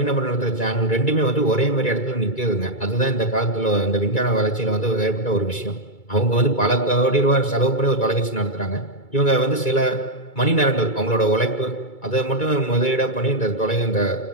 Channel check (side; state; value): right; late; 2.3 ms